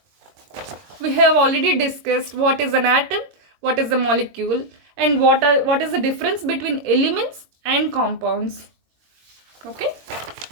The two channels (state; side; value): late; left; 22 ms